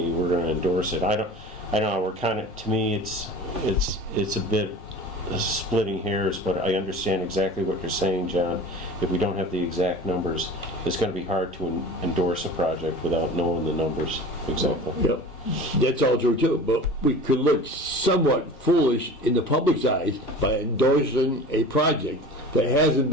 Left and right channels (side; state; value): both; normal; correlation 0.38